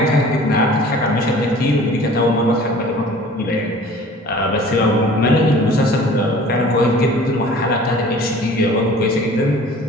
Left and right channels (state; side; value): normal; both; correlation 0.47